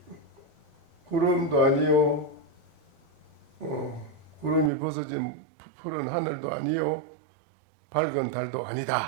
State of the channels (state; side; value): drops out; left; at 4.7 s